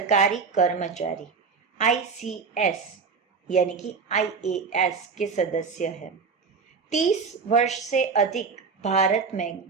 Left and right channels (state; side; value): quieter; left; 5.2 dB